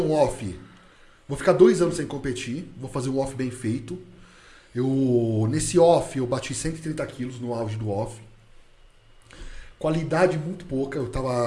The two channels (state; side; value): identical; both; correlation 1.00